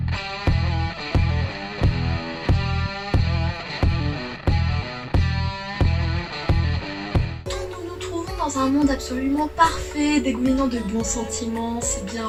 Dans un monde absolument parfait, dégoulinant de bons sentiments, c'est bien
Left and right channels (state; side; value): identical; both; correlation 1.00